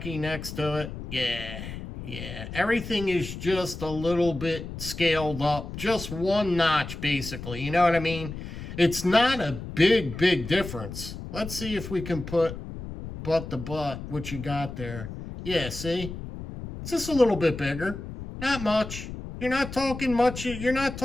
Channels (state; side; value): noise; left; rumble, 9 dB below the sound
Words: next to it. Yeah. Everything is just a little bit scaled up. Just one notch, basically. You know what I mean? It's not a big difference. Let's see if we can put butt to butt what you got there. Yeah, see? It's just a little bit bigger. Not much. You're not talking much